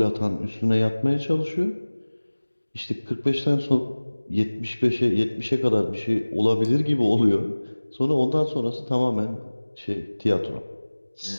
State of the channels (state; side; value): inverted; both; correlation -1.00